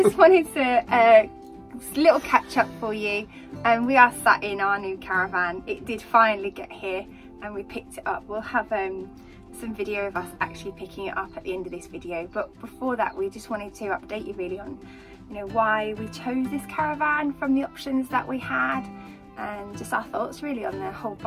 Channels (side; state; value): both; identical; correlation 1.00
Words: wanted to little catch up for you. We are sat in our new caravan. It did finally get here and we picked it up. We'll have some video of us actually picking it up at the end of this video, but before that we just wanted to update you really on why we chose this caravan from the options that we had, and just our thoughts really on the whole